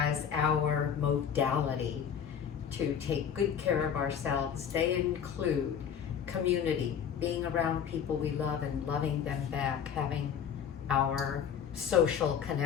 our modality to take good care of ourselves. They include community, being around people we love and loving them back, having our social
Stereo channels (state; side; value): quieter; right; 8.0 dB